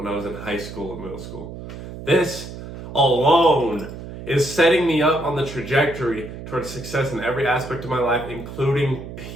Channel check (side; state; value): right; noise; hum, 11 dB below the sound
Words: I was in high school and middle school. This alone is setting me up on the trajectory towards success in every aspect of my life, including